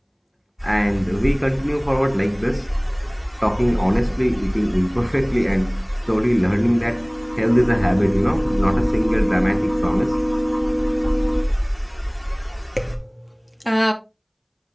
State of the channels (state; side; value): identical; both; correlation 1.00